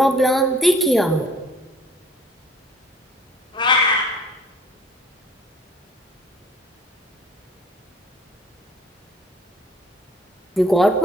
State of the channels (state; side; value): normal; both; correlation 0.54